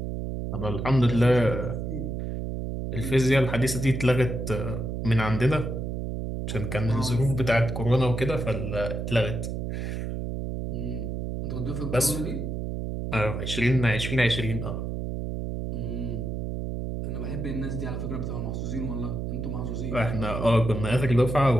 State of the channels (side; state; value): right; noise; hum, 3 dB below the sound